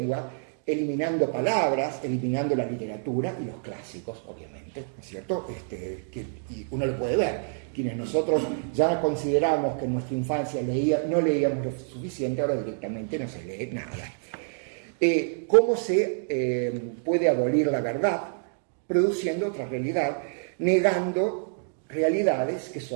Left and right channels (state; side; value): silent; left; digital silence